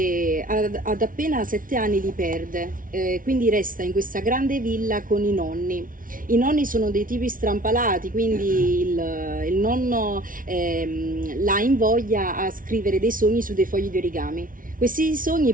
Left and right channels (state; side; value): late; left; 0.39 ms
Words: ad appena 7 anni li perde, quindi resta in questa grande villa con i nonni. I nonni sono dei tipi strampalati, quindi il nonno la invoglia a scrivere dei sogni su dei fogli di origami. Questi sogni